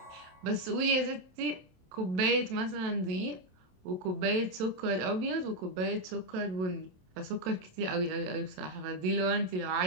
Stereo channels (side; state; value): left; late; 27 ms